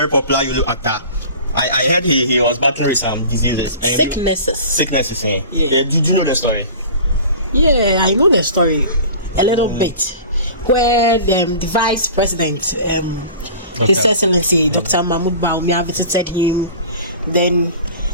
popular Yolo actor. I heard he was battling with some diseases. Sicknesses, eh? Yeah. Did you know the story? Yeah, I know the story a little bit. Where the vice president, His Excellency Dr. Mahmoud Baumia visited him. Then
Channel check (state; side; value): inverted; both; correlation -0.40